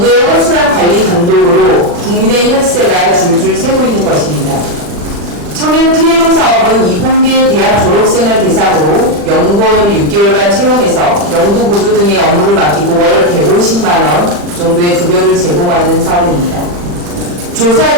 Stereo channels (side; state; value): left; late; 40 ms